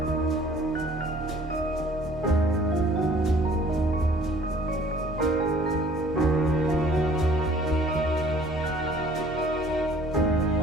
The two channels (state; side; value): normal; both; correlation 0.54